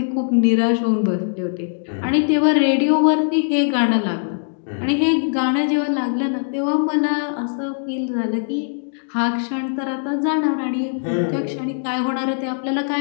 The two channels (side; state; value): right; silent; digital silence